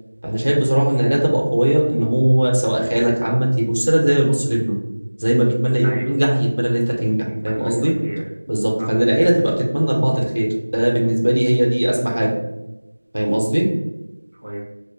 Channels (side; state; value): both; inverted; correlation -1.00